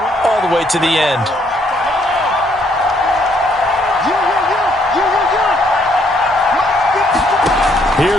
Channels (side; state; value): both; normal; correlation 0.69